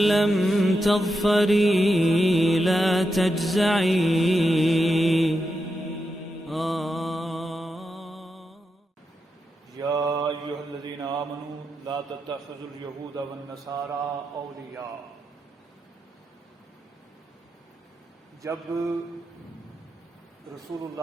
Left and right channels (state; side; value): normal; both; correlation 0.87